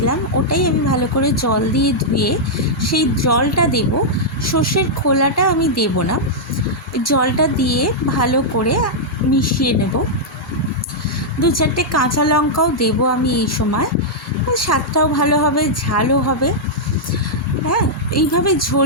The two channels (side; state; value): both; normal; correlation -0.07